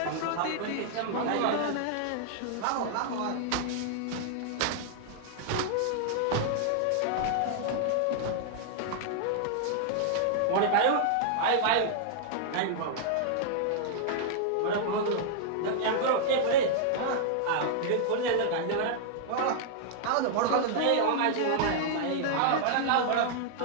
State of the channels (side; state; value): both; different; correlation -0.01